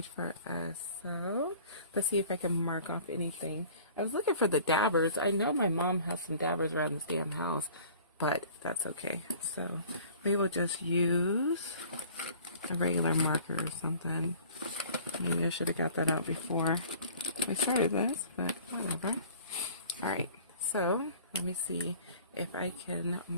for us. So let's see if I can mark off anything. I was looking for the dabbers. I know my mom has some dabbers around this damn house, but that's okay. So we will just use a regular marker or something. Maybe I should have got that out before we started this, but whatever. All right, so let me see if I can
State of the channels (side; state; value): both; inverted; correlation -0.48